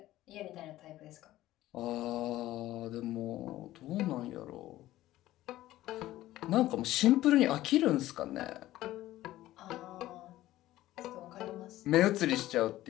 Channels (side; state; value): right; quieter; 15.2 dB